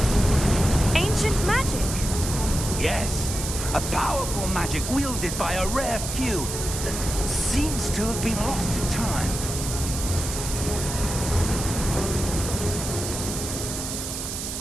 Ancient magic? Yes, a powerful magic wielded by a rare few that seems to have been lost to time.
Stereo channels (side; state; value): right; noise; hiss, 5 dB below the sound